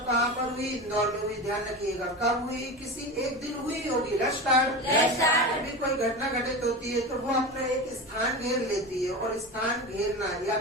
कहाँ पर हुई? इंदौर में हुई. ध्यान रखिएगा कब हुई? किसी एक दिन हुई होगी. Let's start. अभी कोई घटना घटित होती है तो वो अपना एक स्थान घेर लेती है, और स्थान घेरना या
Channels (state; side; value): normal; both; correlation 0.26